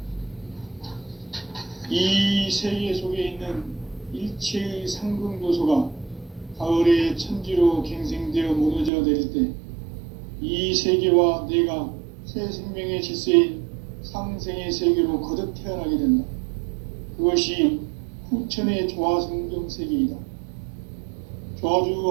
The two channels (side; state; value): left; drops out; at 8.9 s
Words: 이 세계 속에 있는 일체의 상금 요소가 가을의 천지로 갱생되어 무너져 내릴 때 이 세계와 내가 새 생명의 질서인 상생의 세계로 거듭 태어나게 된다. 그것이 후천의 조화성경 세계이다. 조화주